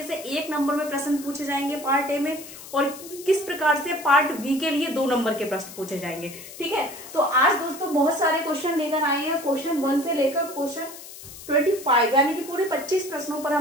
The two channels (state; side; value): noise; left; hiss, 15 dB below the sound